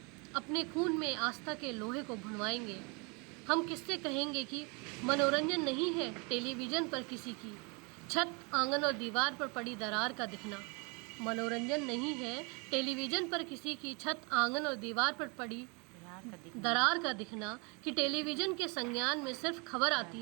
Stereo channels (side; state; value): left; quieter; 31.4 dB